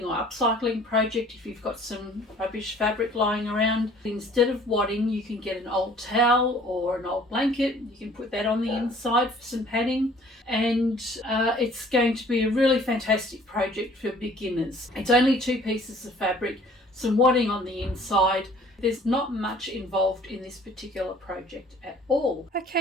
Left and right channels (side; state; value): both; normal; correlation 0.54